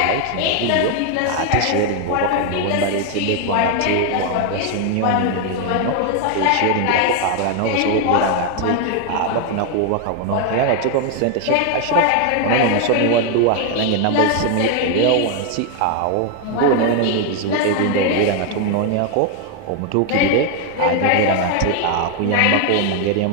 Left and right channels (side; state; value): both; different; correlation 0.01